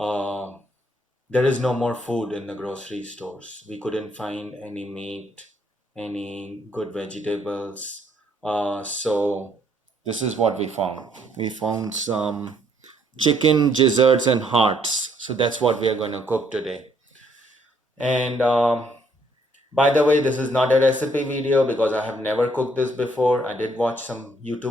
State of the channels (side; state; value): both; normal; correlation 0.68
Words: there is no more food in the grocery stores. We couldn't find any meat, any good vegetables. So this is what we found. We found some chicken gizzards and hearts. So that's what we are going to cook today. And by the way, this is not a recipe video because I have never cooked this before. I did watch some